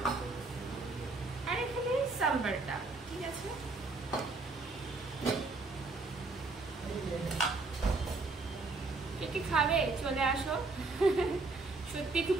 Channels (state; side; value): quieter; left; 3.5 dB